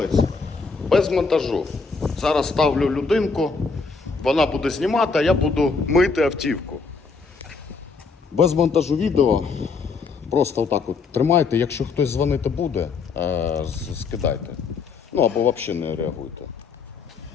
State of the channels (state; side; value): quieter; right; 4.6 dB